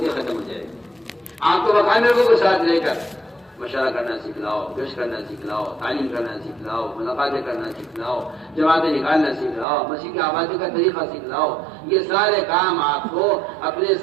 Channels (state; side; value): drops out; left; at 9.7 s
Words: ختم ہو جائے گی. آپ کو مقامی لوگوں کو ساتھ لے کر مشورہ کرنا سکھلاؤ, گشت کرنا سکھلاؤ, تعلیم کرنا سکھلاؤ, ملاقاتیں کرنا سکھلاؤ, جماعتیں نکالنا سکھلاؤ, مسیح کی آبادی کا طریقہ سکھلاؤ. یہ سارے کام آپ کو اپنے